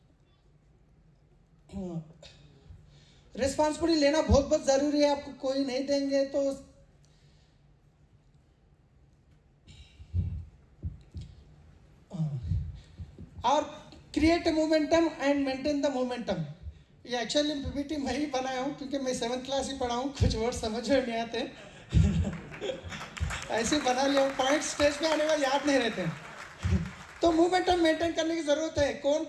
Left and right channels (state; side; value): identical; both; correlation 1.00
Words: रिस्पॉन्सिबिलिटी लेना बहुत बहुत ज़रूरी है। आपको कोई नहीं देंगे तो और create momentum and maintain the momentum. ये एक्चुअली PPT मैं ही बनाया हूँ, क्योंकि मैं 7th क्लास ही पढ़ा हूँ, कुछ वर्ड समझ में नहीं आते। ऐसे बना लिया, पॉइंट स्टेज पे आने वाले याद नहीं रहते। तो मोमेंटम मेंटेन करने की ज़रूरत है। कौन